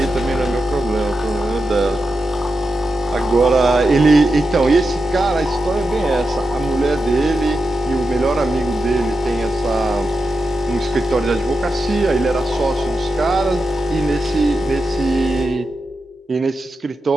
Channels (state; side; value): normal; both; correlation 0.89